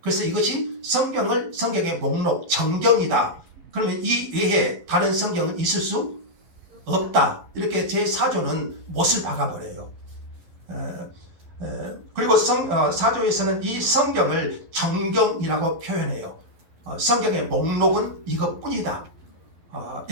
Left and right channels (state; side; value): late; left; 12 ms